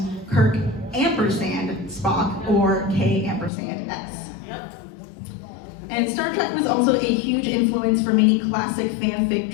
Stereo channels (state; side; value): drops out; right; at 3.5 s